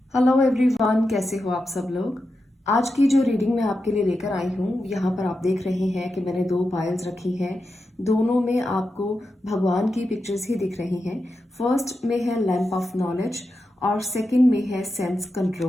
Hello everyone, कैसे हो आप सब लोग। आज की जो रीडिंग मैं आपके लिए लेकर आई हूँ, यहाँ पर आप देख रहे हैं कि मैंने दो पायल्स रखी हैं। दोनों में आपको भगवान की पिक्चर्स ही दिख रही हैं। फर्स्ट में है लैंप ऑफ नॉलेज और सेकंड में है सेंस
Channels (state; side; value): normal; both; correlation 0.89